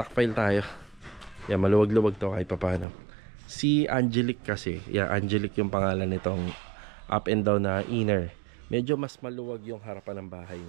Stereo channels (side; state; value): left; drops out; at 2.9 s